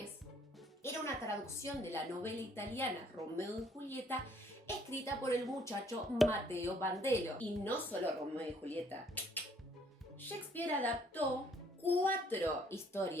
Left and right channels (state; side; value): normal; both; correlation 0.63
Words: era una traducción de la novela italiana Romeo y Julieta, escrita por el muchacho Matteo Bandello. Y no solo Romeo y Julieta. Shakespeare adaptó 4